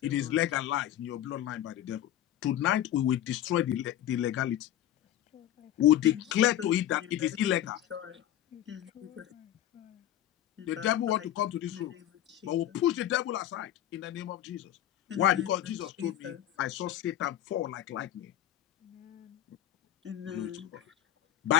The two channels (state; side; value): quieter; right; 12.2 dB